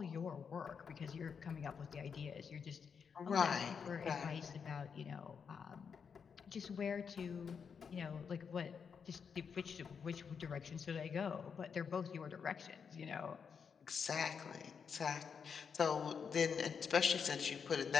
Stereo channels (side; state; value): right; quieter; 6.4 dB